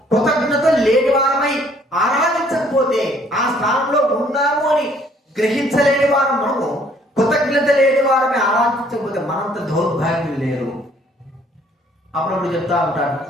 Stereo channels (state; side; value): normal; both; correlation 0.62